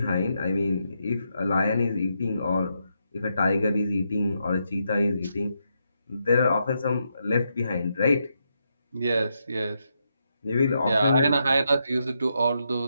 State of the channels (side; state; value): both; inverted; correlation -0.82